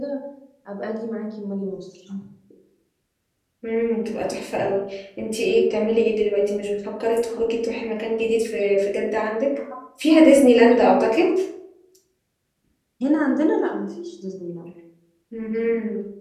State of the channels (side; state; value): both; identical; correlation 1.00